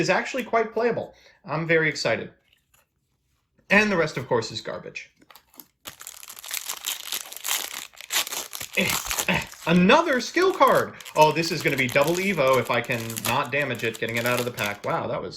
actually quite playable. I'm very excited. And the rest, of course, is garbage. Another skill card! Oh, this is going to be double Evo if I can not damage it, getting it out of the pack. Wow, that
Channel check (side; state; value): both; identical; correlation 1.00